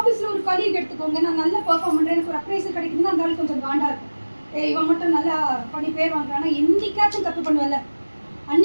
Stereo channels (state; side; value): inverted; both; correlation -1.00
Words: ஒரு கலீக் எடுத்துக்கோங்க, நான் நல்லா பெர்ஃபார்ம் பண்றேன், எனக்கு ஒரு அப்ரைசல் கிடைக்குதுன்னா அந்த ஆள் கொஞ்சம் காண்டா இருக்கும். இவன் மட்டும் நல்லா பண்ணி பேர் வாங்குறானா, என்னைக்காச்சும் தப்பு பண்ணுவல,